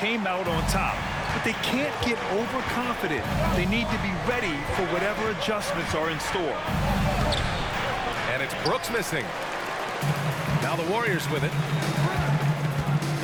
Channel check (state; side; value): identical; both; correlation 1.00